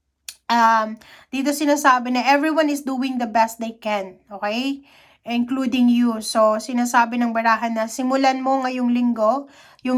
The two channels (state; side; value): identical; both; correlation 1.00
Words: Dito sinasabi na everyone is doing the best they can. Okay? Including you. So, sinasabi ng barahan na simulan mo ngayong linggo